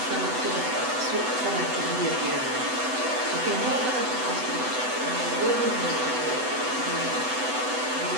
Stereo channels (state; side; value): late; left; 8.0 ms